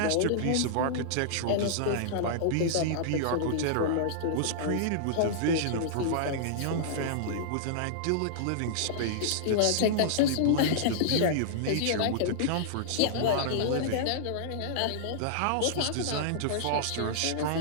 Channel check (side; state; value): both; different; correlation -0.02